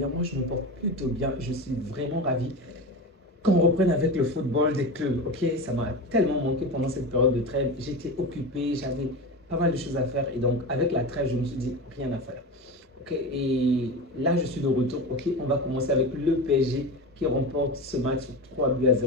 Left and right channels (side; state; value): both; normal; correlation 0.25